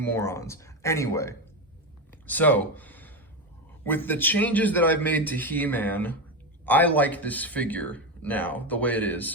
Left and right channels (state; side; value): normal; both; correlation 0.14